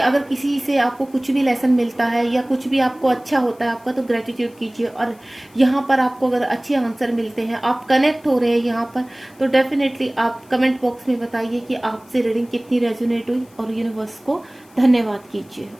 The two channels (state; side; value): noise; left; hiss, 29 dB below the sound